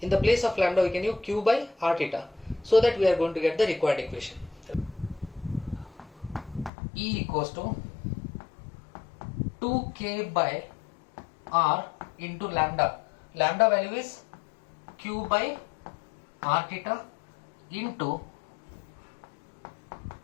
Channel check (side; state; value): right; drops out; at 6.7 s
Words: the place of lambda we can use q by r theta, so that we are going to get the required equation. E equals to 2k by r into lambda. Lambda value is q by r theta into